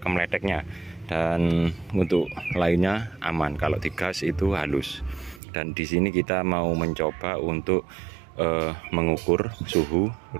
dan untuk lainnya aman. Kalau di gas itu halus. Dan di sini kita mau mencoba untuk mengukur suhu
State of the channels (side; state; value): left; drops out; at 5.4 s